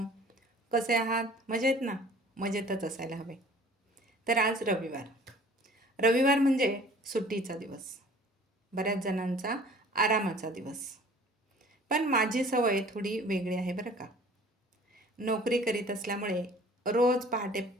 कसे आहात? मजेत ना? मजेतच असायला हवे. तर आज रविवार. रविवार म्हणजे सुट्टीचा दिवस. बऱ्याच जणांचा आरामाचा दिवस. पण माझी सवय थोडी वेगळी आहे बरं का. नोकरी करीत असल्यामुळे रोज पहाटे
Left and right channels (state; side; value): normal; both; correlation 0.50